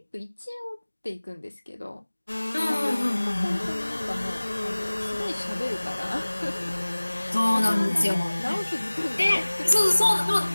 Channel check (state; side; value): inverted; both; correlation -1.00